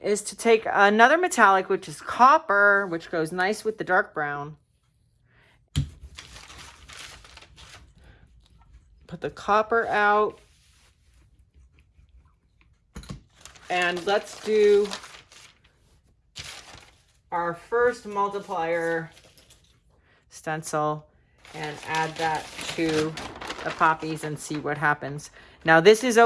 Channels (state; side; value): identical; both; correlation 1.00